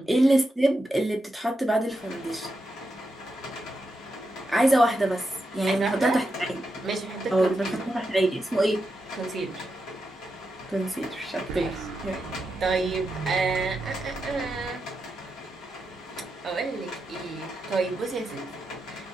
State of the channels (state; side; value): normal; both; correlation 0.86